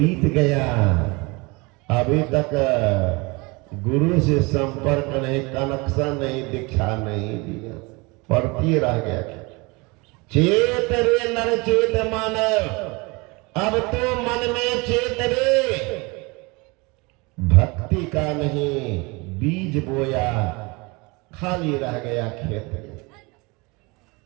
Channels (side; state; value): left; quieter; 26.4 dB